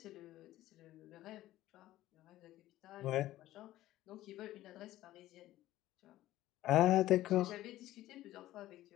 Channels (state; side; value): quieter; right; 15.1 dB